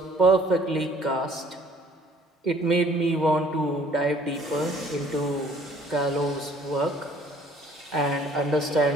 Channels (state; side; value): normal; both; correlation 0.56